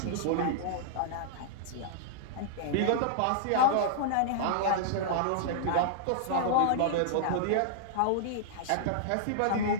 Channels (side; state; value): both; different; correlation -0.01